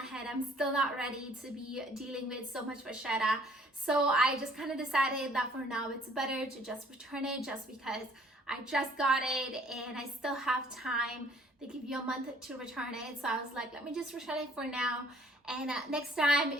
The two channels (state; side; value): normal; both; correlation 0.59